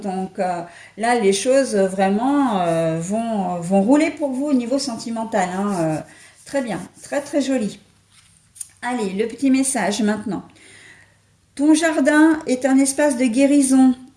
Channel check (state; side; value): identical; both; correlation 1.00